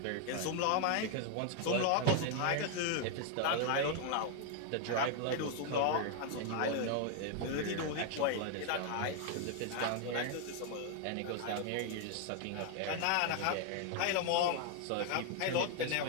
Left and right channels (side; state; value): both; different; correlation 0.00